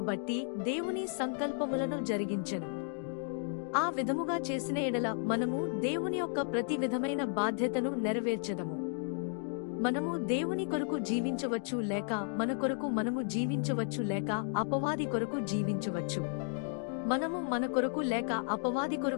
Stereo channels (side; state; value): right; silent; 55 dB below the other